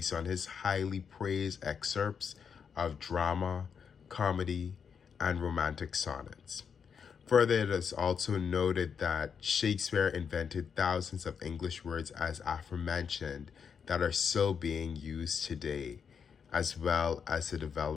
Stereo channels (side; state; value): right; quieter; 6.7 dB